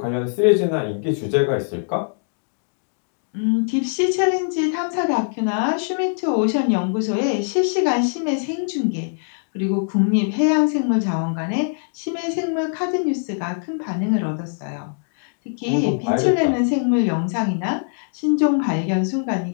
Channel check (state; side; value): silent; right; digital silence